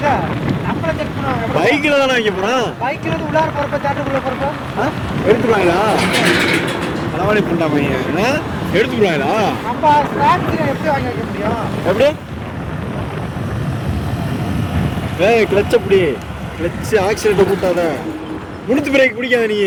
நம்மள செக் பண்ணுவாங்க. பைக்கில் தானே வைக்க போறோம். பைக்கில் வந்து உள்ளார போறப்ப தேட்டருக்குள்ள போறப்ப எடுத்துருவாங்களா? அளவாளி பண்ணா பையன் எடுத்துக்கிறாங்களா? நம்ம ஸ்நாக்ஸ் எப்படி வாங்கி வைக்க முடியும்? எப்படி? கிளச் அப்படி கிளச் ஆக்சிடென்ட் கூட்டாத. முழுத்து பிரேக் பிடிக்காத. நீ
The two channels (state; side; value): identical; both; correlation 1.00